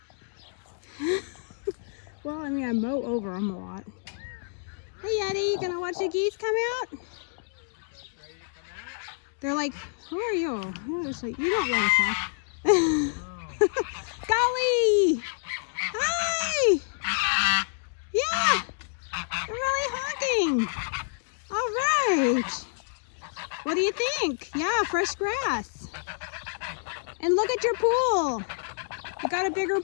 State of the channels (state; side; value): silent; right; digital silence